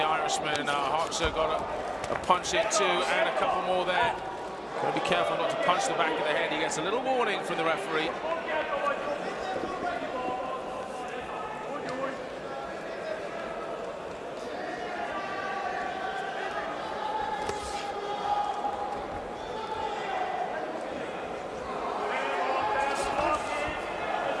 Irishman. Hoxha got a punch in too, and a couple more there. Got to be careful not to punch the back of the head. He gets a little warning from the referee.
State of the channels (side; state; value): both; identical; correlation 1.00